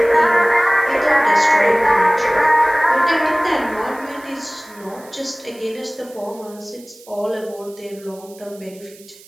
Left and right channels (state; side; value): noise; right; hiss, 23 dB below the sound